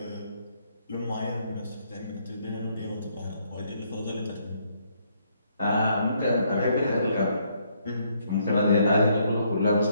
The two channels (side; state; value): both; inverted; correlation -0.70